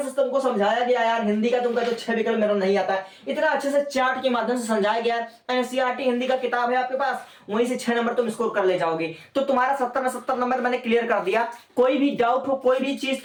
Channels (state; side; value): identical; both; correlation 1.00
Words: से तुमको समझाया गया यार, हिंदी का तुमका जो 6 विकल्प मेरा नहीं आता है, इतना अच्छे से चार्ट के माध्यम से समझाया गया है। एनसीईआरटी हिंदी का किताब है आपके पास, वहीं से 6 नंबर तुम स्कोर कर ले जाओगे। तो तुम्हारा 70 में 70 नंबर मैंने क्लियर कर दिया। कोई भी डाउट हो, कोई भी चीज